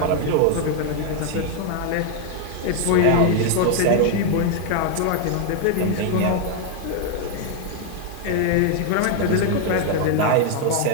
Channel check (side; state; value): both; different; correlation 0.01